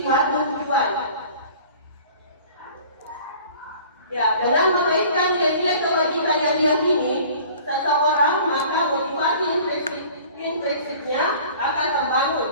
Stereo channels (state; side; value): inverted; both; correlation -0.47